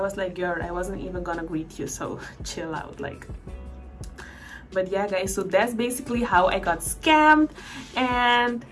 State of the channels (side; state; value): both; identical; correlation 1.00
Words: like, girl, I wasn't even gonna greet you, so chill out. Like, but yeah guys, so that's basically how I got scammed. And